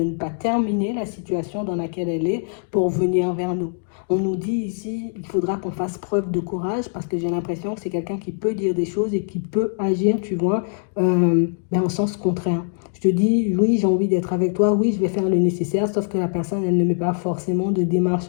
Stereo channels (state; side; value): silent; right; 64 dB below the other